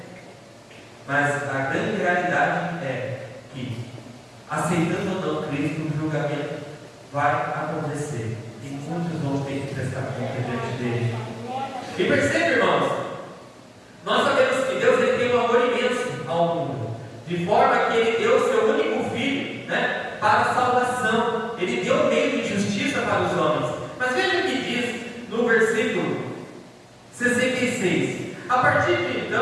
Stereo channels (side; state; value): both; identical; correlation 1.00